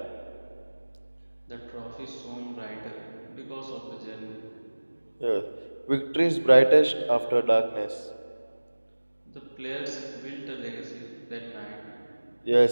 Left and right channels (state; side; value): inverted; both; correlation -1.00